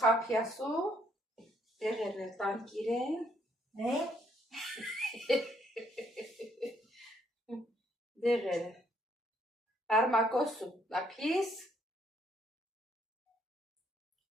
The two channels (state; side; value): normal; both; correlation 0.69